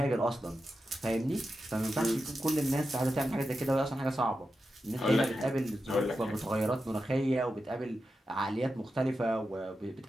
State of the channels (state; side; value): normal; both; correlation 0.90